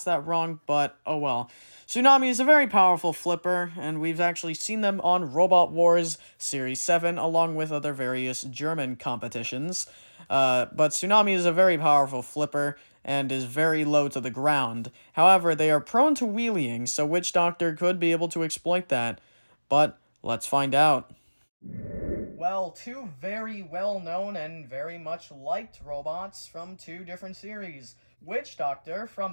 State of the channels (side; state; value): both; inverted; correlation -1.00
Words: that wrong, but oh well. Tsunami is a very powerful flipper, and we've actually seen them on Robot Wars Series 7, along with other various German competitions. But Tsunami is a very powerful flipper, and is very low to the ground. However, they are prone to wheeling, so Witch Doctor could be able to exploit that. But let's find out. Well, two very well-known and very much liked robots from two different series. Witch Doctor